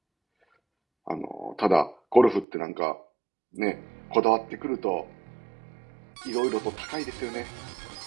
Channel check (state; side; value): drops out; left; at 2.5 s